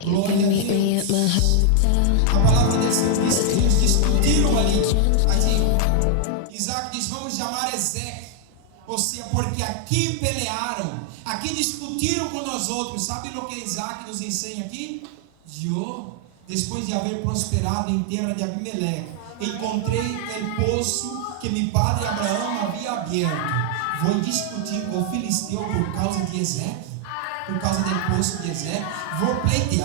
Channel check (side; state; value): both; different; correlation 0.00